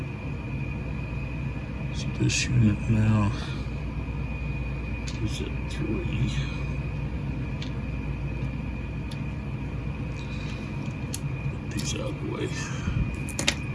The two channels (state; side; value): identical; both; correlation 1.00